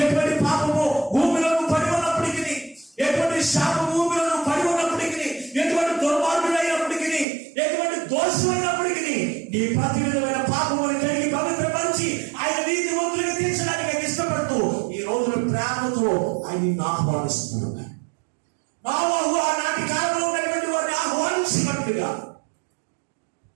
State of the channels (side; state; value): left; drops out; at 7.2 s